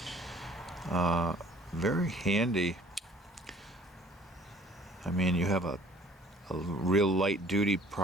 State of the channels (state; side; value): normal; both; correlation 0.54